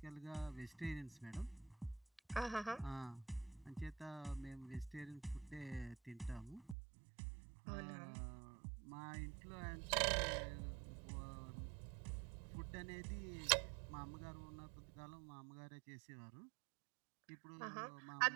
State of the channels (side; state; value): left; drops out; at 6.8 s